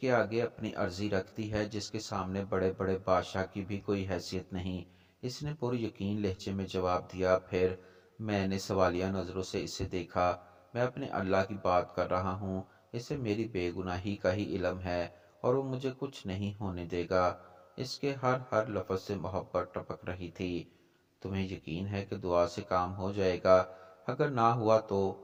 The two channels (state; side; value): identical; both; correlation 1.00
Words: आगे अपनी अर्जी रख दी है, जिसके सामने बड़े बड़े बादशाह की भी कोई हैसियत नहीं। इसने पूरी यकीन लहजे में जवाब दिया। फिर मैंने सवालिया नज़रों से इसे देखा। मैं अपने अल्लाह की बात कर रहा हूँ। इसे मेरी बेगुनाही का ही इल्म है और वो मुझे कुछ नहीं होने देगा। इसके हर हर लफ्ज़ से मोहब्बत टपक रही थी। तुम्हें यकीन है कि दुआ से काम हो जाएगा? अगर ना हुआ तो?